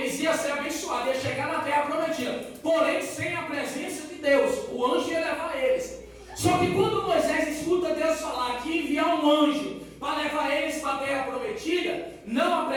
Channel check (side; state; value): both; identical; correlation 1.00